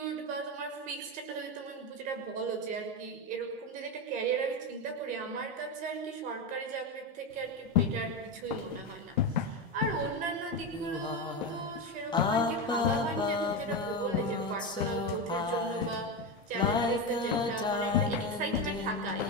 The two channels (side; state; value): both; normal; correlation 0.15